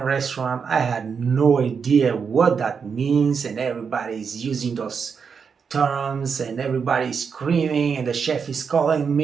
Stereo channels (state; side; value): quieter; left; 6.1 dB